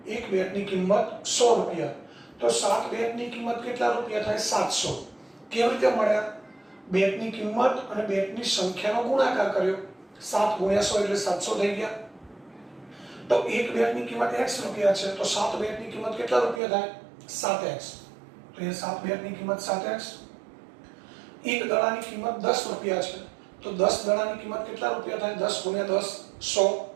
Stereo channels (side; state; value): left; drops out; at 16.6 s